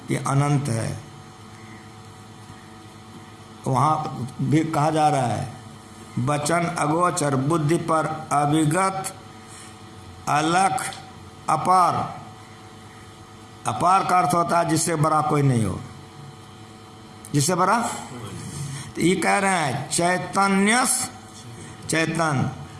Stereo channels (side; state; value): both; identical; correlation 1.00